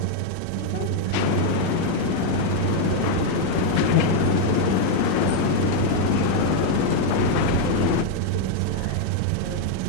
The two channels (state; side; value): different; both; correlation 0.01